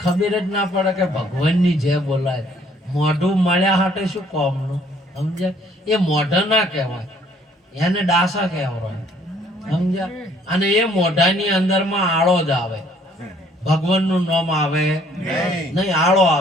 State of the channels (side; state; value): both; normal; correlation 0.62